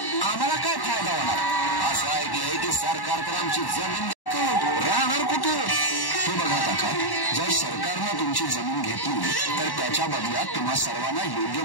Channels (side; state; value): right; late; 1.1 ms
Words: आम्हाला काय फायदा होणार? असं ऐकलंय की सरकार तर आमची जमीन राहणार कुठे? हे बघा काका, जर सरकारनं तुमची जमीन घेतली तर त्याच्या बदल्यात तुम्हा सर्वांना योग्य